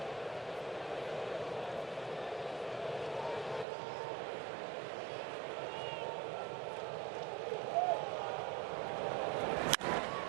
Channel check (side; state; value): left; drops out; at 3.7 s